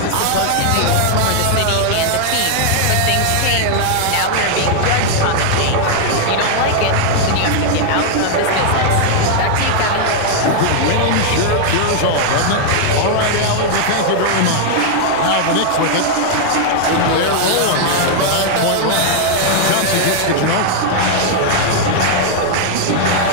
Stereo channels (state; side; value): different; both; correlation 0.00